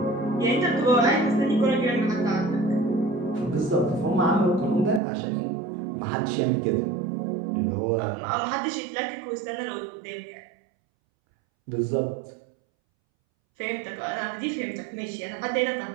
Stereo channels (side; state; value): left; drops out; at 5.0 s